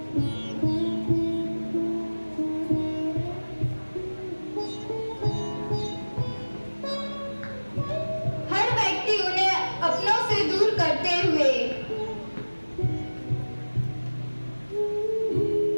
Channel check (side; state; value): both; inverted; correlation -1.00